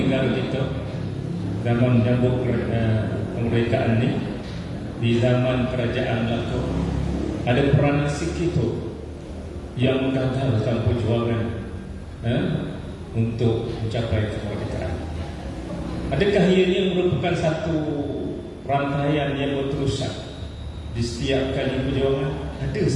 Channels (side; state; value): both; identical; correlation 1.00